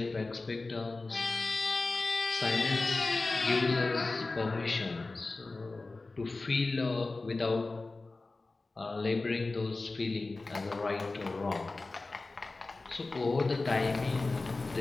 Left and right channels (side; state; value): right; quieter; 3.4 dB